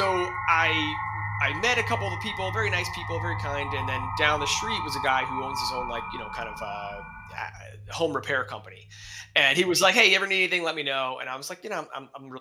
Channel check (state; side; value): identical; both; correlation 1.00